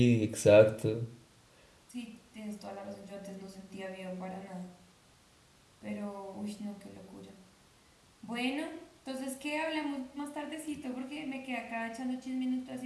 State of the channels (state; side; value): identical; both; correlation 1.00